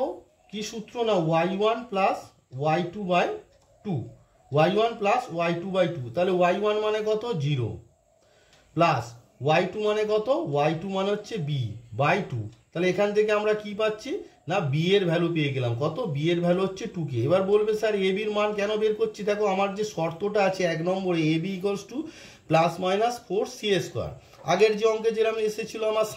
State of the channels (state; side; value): identical; both; correlation 1.00